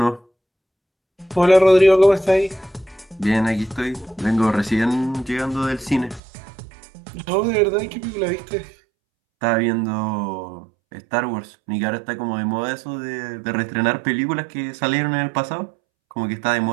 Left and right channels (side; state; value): left; drops out; at 6.2 s